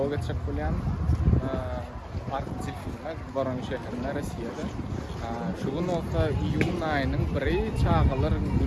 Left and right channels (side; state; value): both; identical; correlation 1.00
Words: geçip bolýan. Artçyl filmek Baran şäherinde Russiýada. Şu wagtda iýun aýynyň 1-i çağalaryň